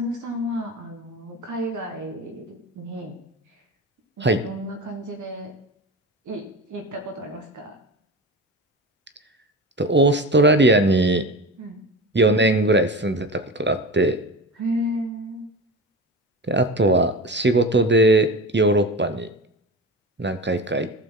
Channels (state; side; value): normal; both; correlation 0.29